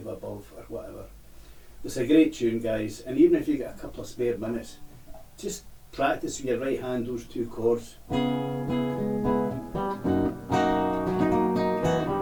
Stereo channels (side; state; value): both; identical; correlation 1.00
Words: above, or whatever. It's a great tune, guys, and even if you get a couple of spare minutes, just practice with your right hand those 2 chords. And